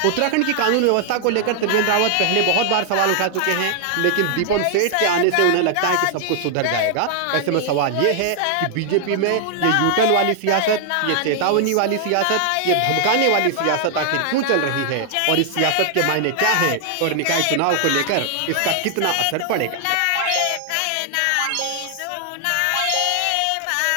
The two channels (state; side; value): different; both; correlation 0.00